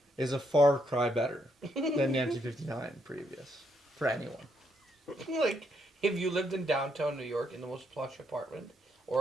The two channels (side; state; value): both; normal; correlation 0.76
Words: is a far cry better than 1959 previous for anyone. Like, if you lived in downtown New York in the most plush apartment,